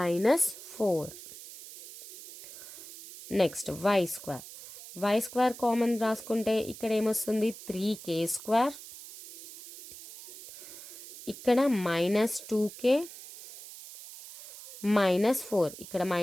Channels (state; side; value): noise; right; hiss, 15 dB below the sound